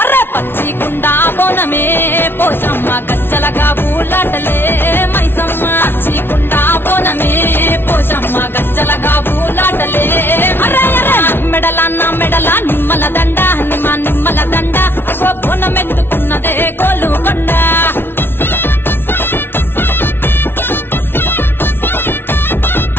అరే పచ్చి కుండ బోనమే పోషమ్మ గచ్చలగా ఊలాటలే మైసమ్మ పచ్చి కుండ బోనమే పోషమ్మ గచ్చలగా ఊలాటలే అరే అరే మెడలా నా మెడలా నిమ్మల దండ నిమ్మల దండ అగో బోనమెత్తుకున్నదే గోలుకొండ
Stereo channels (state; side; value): late; right; 0.11 ms